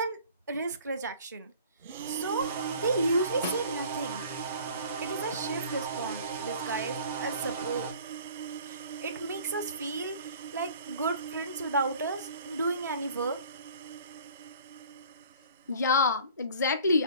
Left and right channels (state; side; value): inverted; both; correlation -0.48